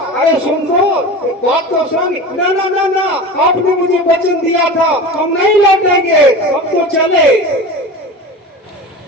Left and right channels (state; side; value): normal; both; correlation 0.31